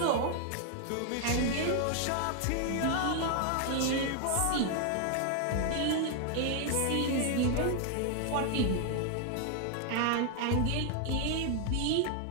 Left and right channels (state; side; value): different; both; correlation 0.00